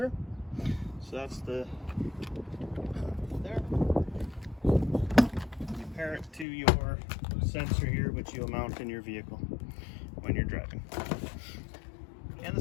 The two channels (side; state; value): right; drops out; at 6.5 s